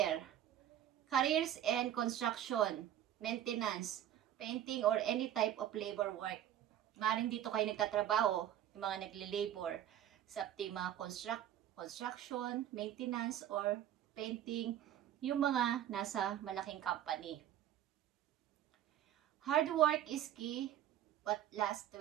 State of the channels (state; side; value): quieter; left; 11.4 dB